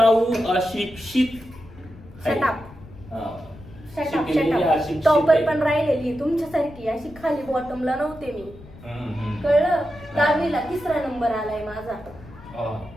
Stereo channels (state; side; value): noise; left; rumble, 19 dB below the sound